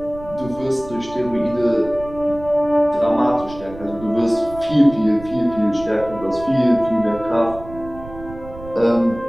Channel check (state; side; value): noise; right; rumble, 16 dB below the sound